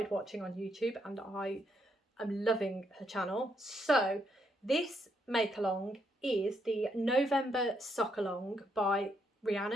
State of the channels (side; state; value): both; normal; correlation 0.76